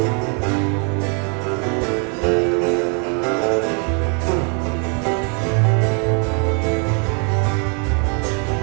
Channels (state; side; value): quieter; left; 38.4 dB